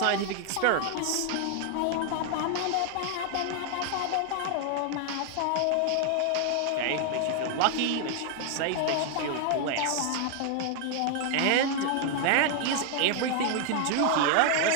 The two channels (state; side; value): different; both; correlation 0.00